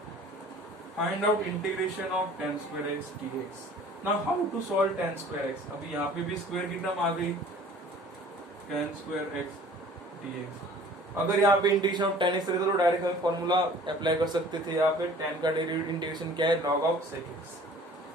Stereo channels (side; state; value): both; normal; correlation 0.48